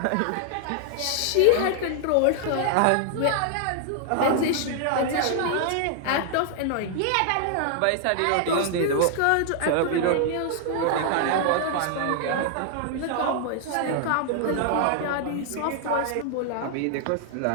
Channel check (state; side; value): different; both; correlation 0.00